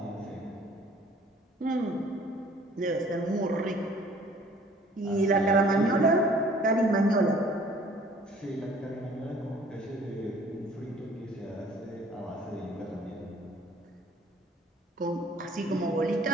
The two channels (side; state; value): both; normal; correlation 0.54